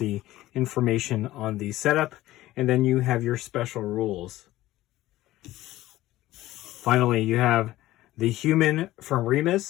information on the setup. And then you have your special rules. Finally, you have the Human from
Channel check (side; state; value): right; quieter; 16.1 dB